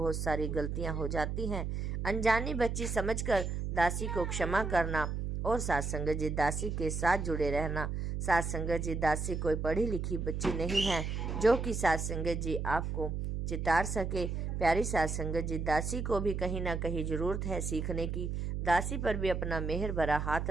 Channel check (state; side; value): noise; right; hum, 2 dB below the sound